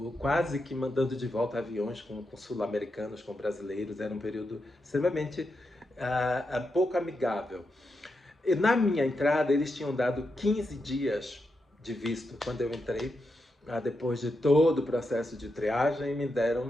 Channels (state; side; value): normal; both; correlation 0.86